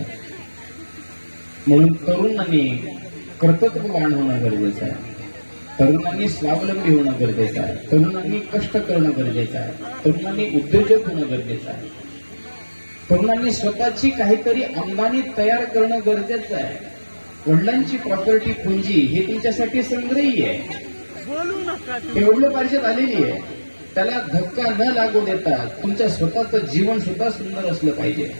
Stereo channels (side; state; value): both; inverted; correlation -1.00